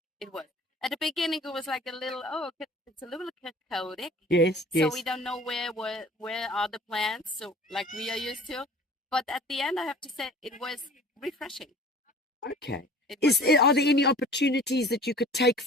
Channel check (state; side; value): normal; both; correlation 0.46